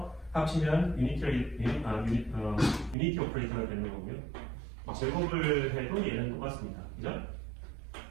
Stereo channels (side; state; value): left; drops out; at 3.0 s